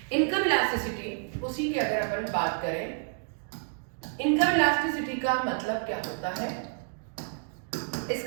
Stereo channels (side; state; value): left; silent; digital silence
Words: इनकम इलास्टिसिटी उसी की अगर अपन बात करें, इनकम इलास्टिसिटी का मतलब क्या होता है?